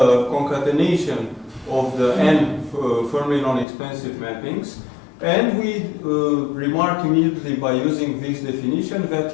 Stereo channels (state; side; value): drops out; right; at 3.7 s